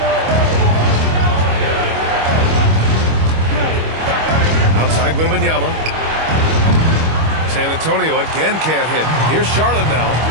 Outside Wembanyama. San Antonio again can't hit. Here's Charlotte now.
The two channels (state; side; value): late; left; 25 ms